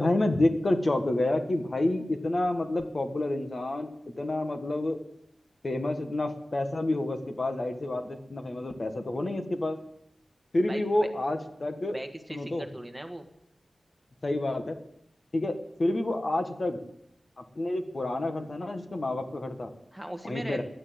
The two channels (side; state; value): both; normal; correlation 0.96